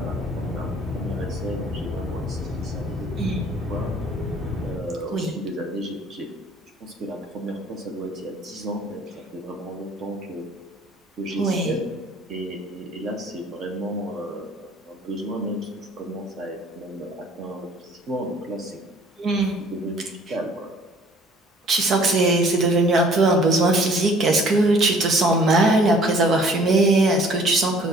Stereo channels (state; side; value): normal; both; correlation 0.55